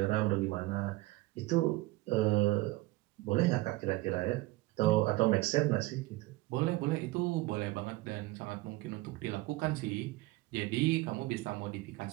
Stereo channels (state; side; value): quieter; left; 19.5 dB